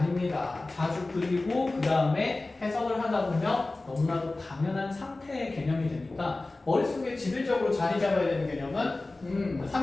자주 그리고 그 다음에 해석을 하다 보면 너무나도 당연한 상태의 개념이 되니까 머릿속에 지배적으로 자리 잡아야 되는 개념은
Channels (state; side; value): quieter; right; 3.1 dB